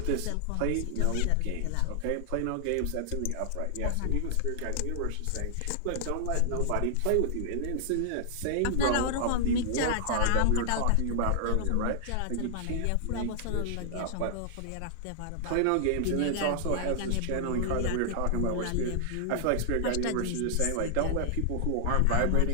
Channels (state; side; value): different; both; correlation -0.01